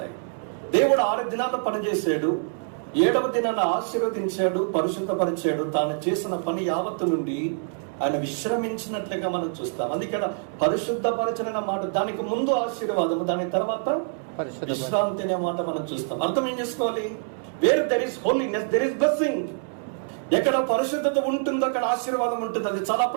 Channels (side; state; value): left; silent; 61 dB below the other